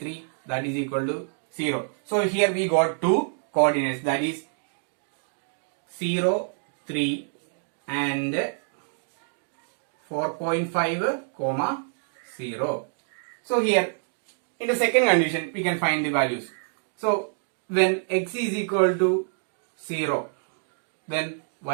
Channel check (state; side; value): silent; left; digital silence